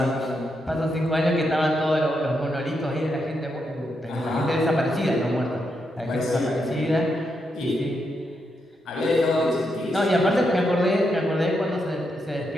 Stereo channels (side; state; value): both; normal; correlation 0.82